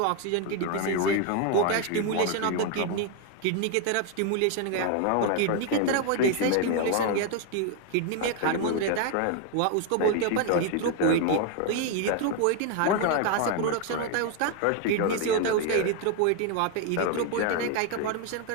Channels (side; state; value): both; different; correlation 0.01